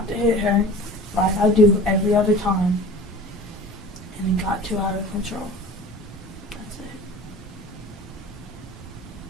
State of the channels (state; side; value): normal; both; correlation 0.41